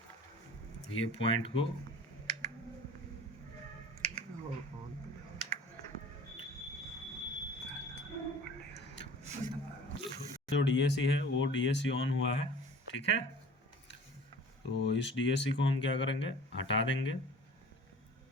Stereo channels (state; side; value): normal; both; correlation 0.44